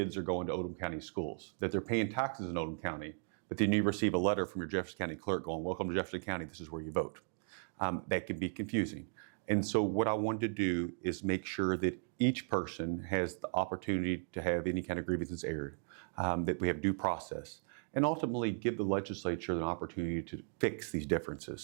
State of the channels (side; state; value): left; silent; 53 dB below the other